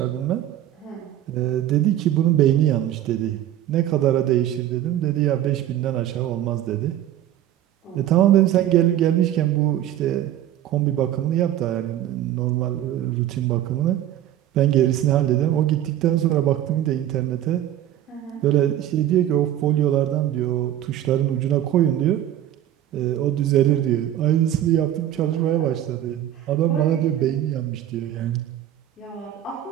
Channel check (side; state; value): left; quieter; 12.3 dB